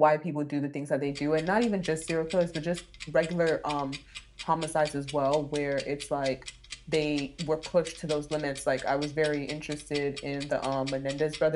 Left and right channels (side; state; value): both; identical; correlation 1.00